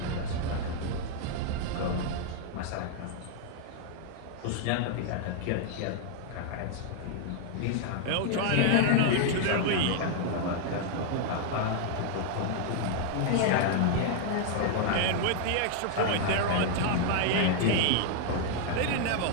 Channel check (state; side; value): different; both; correlation 0.00